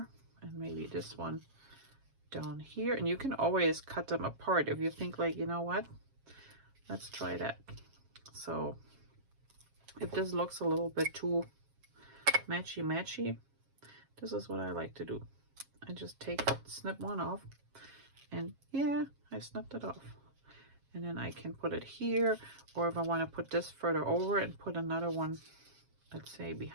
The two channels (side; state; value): left; late; 7.4 ms